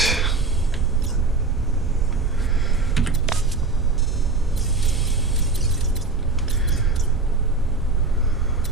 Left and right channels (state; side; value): quieter; left; 3.8 dB